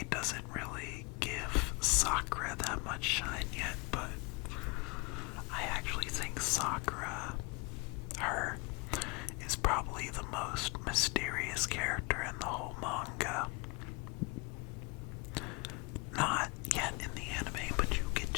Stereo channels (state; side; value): quieter; right; 28.1 dB